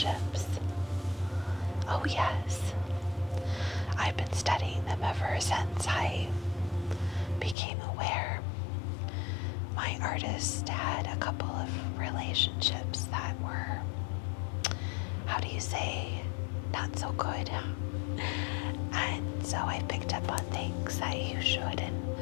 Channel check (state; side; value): drops out; right; at 7.6 s